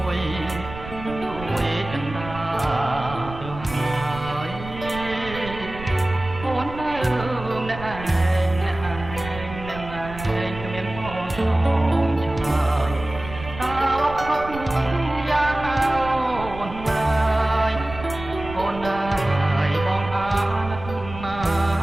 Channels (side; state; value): right; noise; rumble, 12 dB below the sound